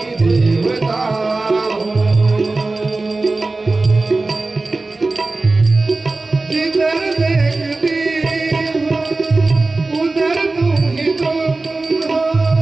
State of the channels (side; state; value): left; quieter; 3.4 dB